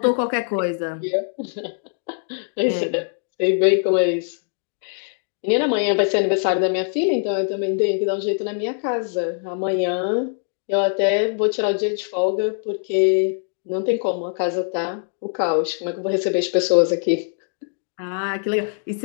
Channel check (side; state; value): right; silent; 62 dB below the other